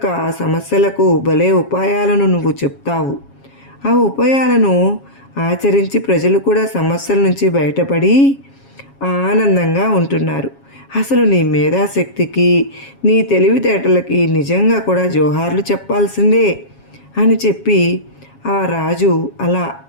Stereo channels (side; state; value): right; late; 7.3 ms